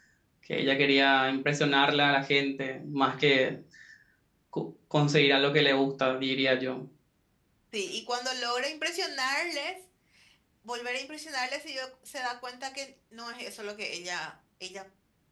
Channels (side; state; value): both; identical; correlation 1.00